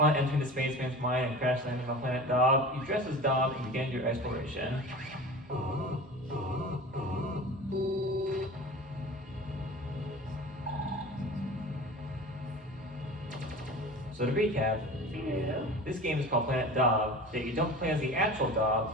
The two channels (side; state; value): both; normal; correlation 0.36